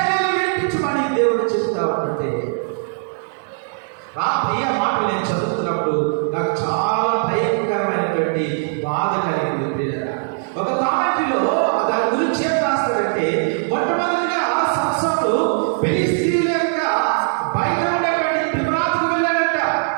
విడిపించమని దేవుడు చెప్తా ఉంటే రాత్రి ఆ మాటలు నేను చదువుతున్నప్పుడు నాకు చాలా భయంకరమైనటువంటి బాధ కలిగింది పిల్లల. ఒక కామెంటరీలో దాని గురించి ఏం రాస్తాడంటే మొట్టమొదటిగా సంసోను ఫిలిష్తీయుల యొక్క బయట ఉండేటువంటి తిమ్నాతుకు వెళ్ళాడట.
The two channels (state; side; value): silent; left; digital silence